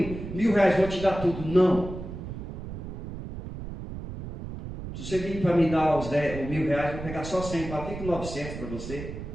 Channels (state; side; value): noise; right; rumble, 9 dB below the sound